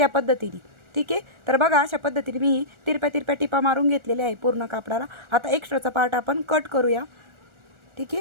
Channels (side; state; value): left; late; 1.4 ms